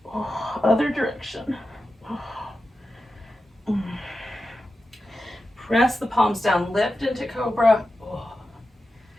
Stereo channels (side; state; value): both; normal; correlation 0.91